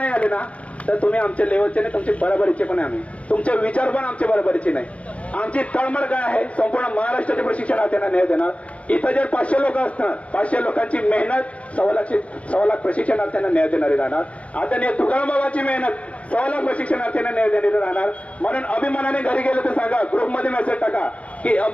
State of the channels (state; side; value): late; right; 0.064 ms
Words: आले ना तर तुम्ही आमच्या लेवलचे नाही, तुमचे बरोबरीचे पण आहे आम्ही, तुमचे विचार पण आमचे बरोबरीचे नाही. आमची तळमळ काय आहे, संपूर्ण महाराष्ट्राच्या प्रशिक्षणार्थ्यांना न्याय देणार. इथं जर 500 लोक असणार, 500 लोकांची मेहनत 1.25 लाख प्रशिक्षणार्थ्यांना न्याय देणारी राहणार. आदरणीय तुकाराम बाबाची मेहनत 1.25 लाख प्रशिक्षणार्थ्यांना न्याय देणारी राहणार. म्हणून अभिमानाने घरी गेलं तर सांगा, ग्रुपमध्ये मेसेज टाका की